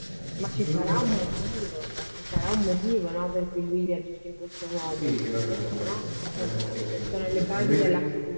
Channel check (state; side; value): inverted; both; correlation -1.00